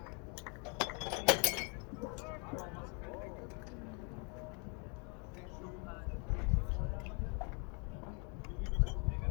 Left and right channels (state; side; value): quieter; right; 35.5 dB